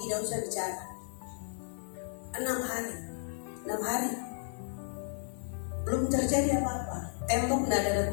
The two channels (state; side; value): silent; right; digital silence